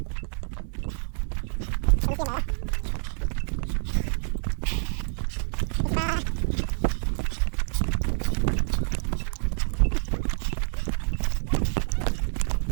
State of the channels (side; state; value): left; silent; 60 dB below the other